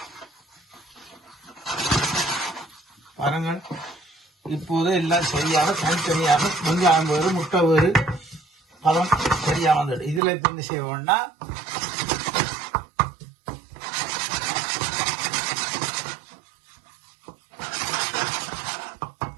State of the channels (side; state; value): left; drops out; at 10.2 s